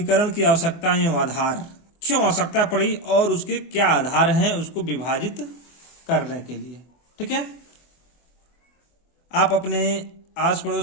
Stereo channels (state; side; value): late; right; 24 ms